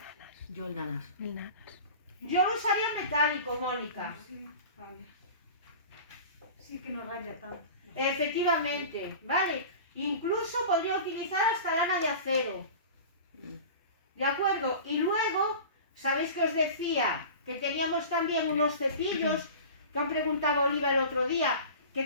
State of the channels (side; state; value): both; inverted; correlation -0.36